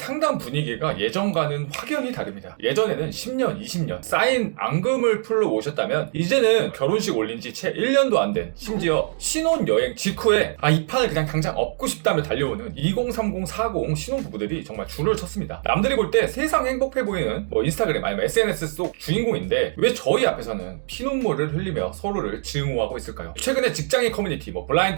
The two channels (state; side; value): silent; left; digital silence